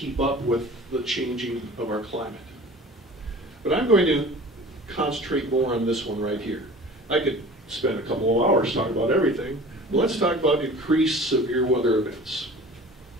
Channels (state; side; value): normal; both; correlation 0.42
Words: up with the changing of our climate. But I'm going to concentrate more on this one right here. I could spend a couple of hours talking about everything, but let's talk about increased severe weather events,